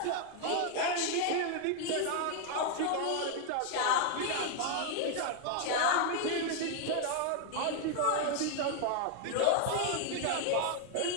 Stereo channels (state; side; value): different; both; correlation 0.00